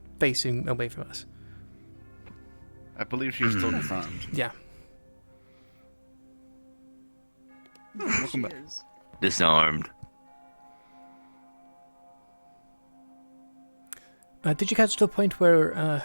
facing away from us. I believe she's still disarmed. Yeah. Welcome back. Disarmed. Did you catch the point where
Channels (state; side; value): inverted; both; correlation -1.00